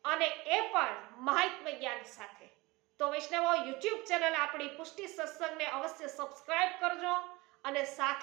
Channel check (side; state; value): left; quieter; 22.6 dB